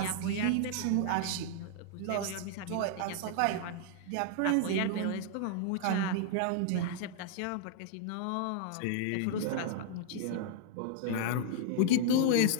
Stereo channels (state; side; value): different; both; correlation -0.01